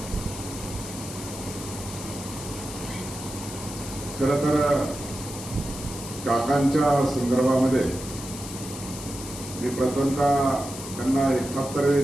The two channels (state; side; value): noise; left; hiss, 11 dB below the sound